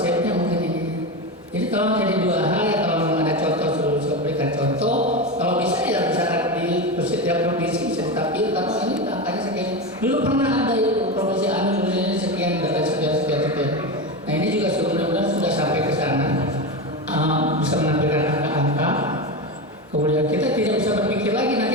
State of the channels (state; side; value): normal; both; correlation 0.18